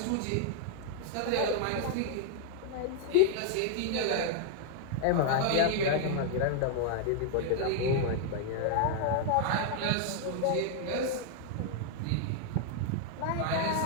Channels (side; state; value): both; different; correlation 0.00